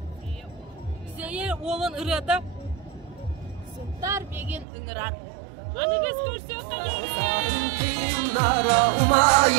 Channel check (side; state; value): left; drops out; at 4.7 s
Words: Zeye oğlan ırıada. Suntar begin ıngırar. Anı biz görsüyor tabi. Nara